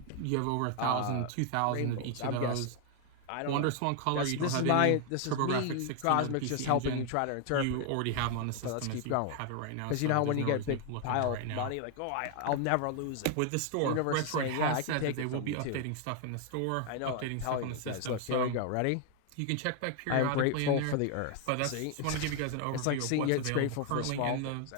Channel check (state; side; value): different; both; correlation 0.00